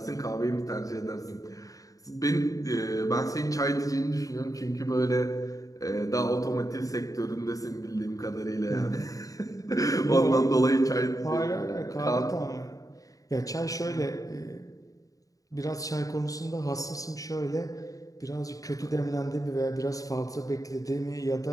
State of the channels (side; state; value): right; late; 0.17 ms